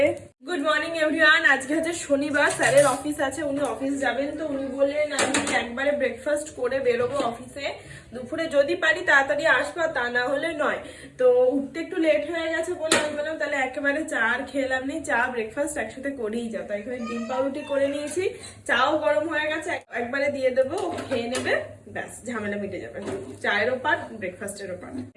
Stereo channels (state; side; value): identical; both; correlation 1.00